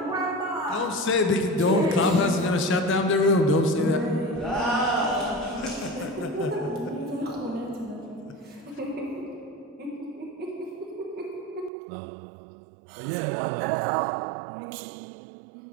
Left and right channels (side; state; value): left; drops out; at 11.7 s